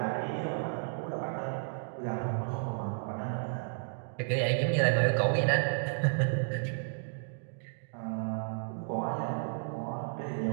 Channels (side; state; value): left; silent; digital silence